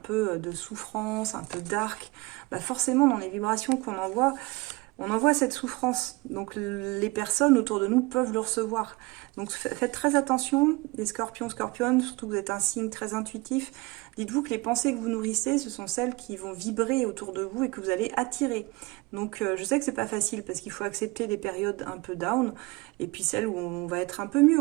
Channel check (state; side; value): quieter; left; 23.5 dB